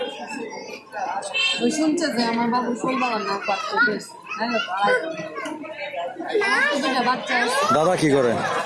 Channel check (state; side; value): identical; both; correlation 1.00